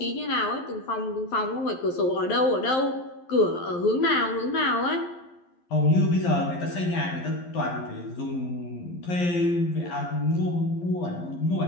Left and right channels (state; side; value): late; right; 11 ms